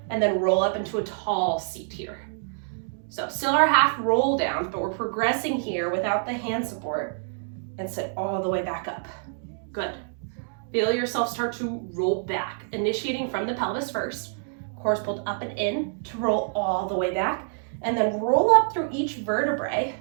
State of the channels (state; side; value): silent; left; digital silence